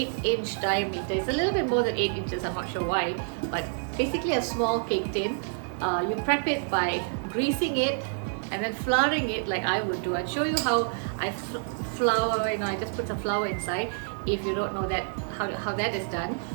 diameter. It's a little bit more than 8 inches, I'm not sure why, but basically a small cake tin. You prep it by greasing it and then flouring it like I would do. I'll show you how I flour, I just put some flour inside. If you don't know that, how that is done.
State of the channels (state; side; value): silent; left; digital silence